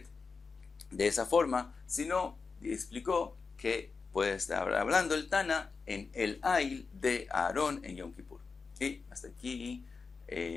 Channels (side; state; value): right; quieter; 4.8 dB